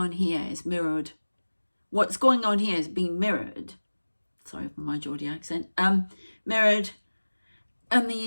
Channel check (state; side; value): inverted; both; correlation -1.00